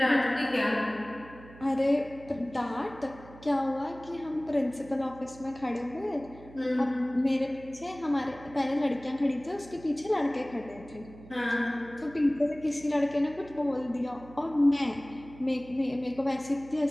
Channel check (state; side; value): noise; right; hum, 19 dB below the sound